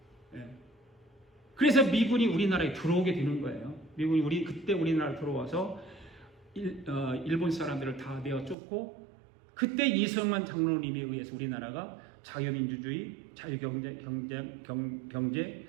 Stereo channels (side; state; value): left; drops out; at 8.6 s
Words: 예. 그래서 미군이 우리나라에 들어오게 되는 거예요. 미군이 그때 우리나라에 들어와서 일본 사람들을 다 내어 쫓고 그때 이승만 장로님에 의해서 우리나라가 자유민주주의, 자유경제,